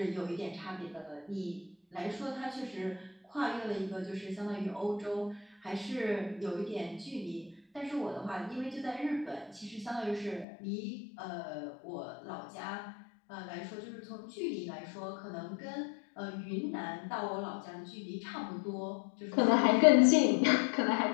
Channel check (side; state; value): right; drops out; at 10.5 s